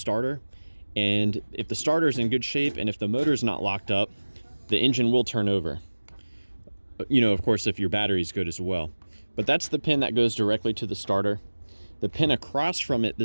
And if the starter is in good shape and if the motor is not locked up, the engine will turn over. You know, of course, if your battery is good as well. But that's the pin that goes directly to the starter. The pin across from it,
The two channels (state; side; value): inverted; both; correlation -1.00